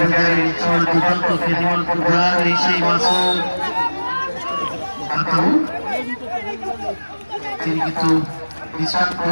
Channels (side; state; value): both; inverted; correlation -1.00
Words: তিনি কিন্তু বিচার